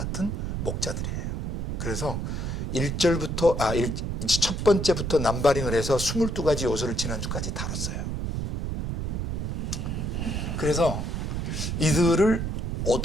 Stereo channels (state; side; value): noise; right; rumble, 2 dB below the sound